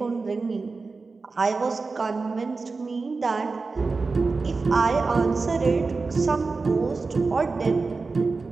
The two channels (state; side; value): quieter; left; 4.1 dB